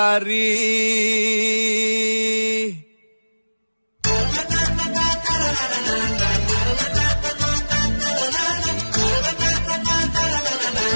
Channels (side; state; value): both; inverted; correlation -1.00